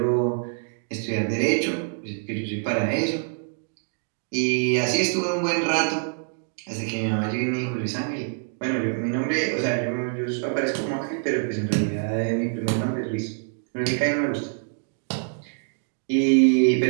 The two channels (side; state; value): left; silent; 62 dB below the other